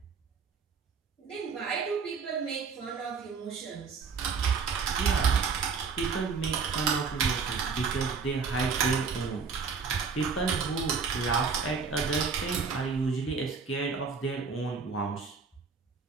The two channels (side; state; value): left; quieter; 5.3 dB